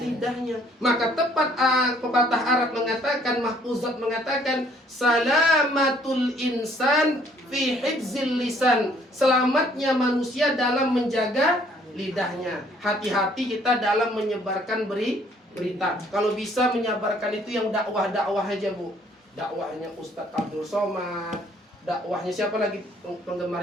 Maka tepat pepatah Arab mengatakan, mahfuzat mengatakan, salamatul insan fi hifzil lisan. Selamatnya manusia dalam menjaga lidahnya. Hati-hati kita dalam menyebarkan berita. Kalau bisa menyebarkan itu yang dakwah-dakwah aja Bu. Dakwahnya Ustadz Abdul Somad, dakwahnya siapa lagi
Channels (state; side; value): normal; both; correlation 0.62